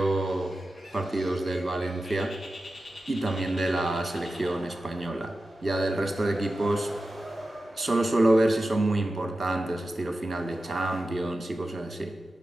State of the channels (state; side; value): normal; both; correlation 0.93